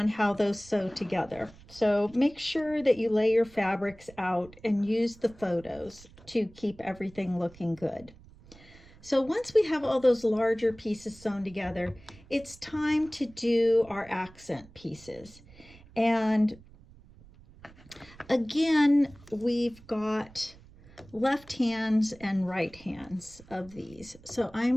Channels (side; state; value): right; noise; rumble, 23 dB below the sound